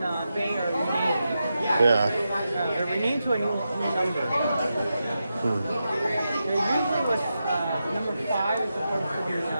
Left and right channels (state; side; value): inverted; both; correlation -0.88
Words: Bay are renamed. Yeah. They're renamed to a new number. There usually was number 5 is supposed to be.